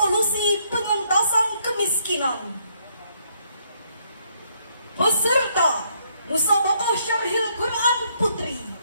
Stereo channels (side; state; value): both; inverted; correlation -0.71